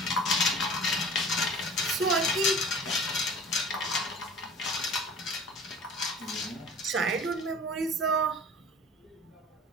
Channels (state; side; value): normal; both; correlation 0.42